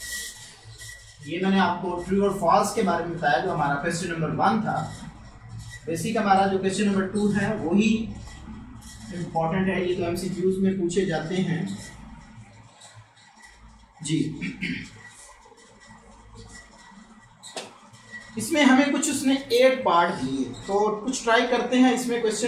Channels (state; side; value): identical; both; correlation 1.00